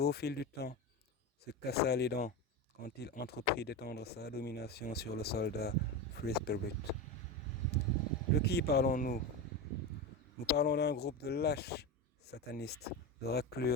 au fil du temps, se cassa les dents quand il entreprit d'étendre sa domination sur le soldat Free Spirit. De qui parlons-nous? Nous parlons d'un groupe de lâches satanistes, de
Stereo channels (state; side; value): normal; both; correlation 0.20